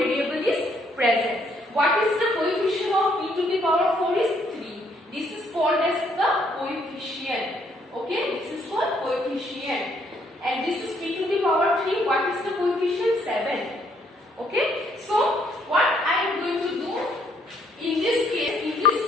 is present. What is the coefficient of p to the power 4 is 3. This is called as the coefficient. Okay, this is called coefficient. And this is p to the power 3. What is the coefficient? 7. Okay, so what I am going to do in this case, in this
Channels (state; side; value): normal; both; correlation 0.68